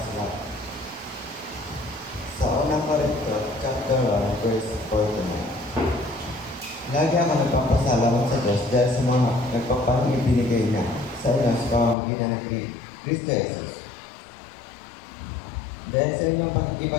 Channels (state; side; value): drops out; right; at 12.0 s